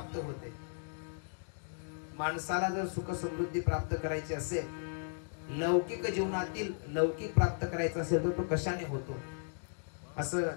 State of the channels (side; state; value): right; silent; digital silence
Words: होते? माणसाला जर सुख समृद्धी प्राप्त करायची असेल, लौकिक जीवनातील लौकिक प्राप्त करायचं असेल तर तो कशाने होतो, असं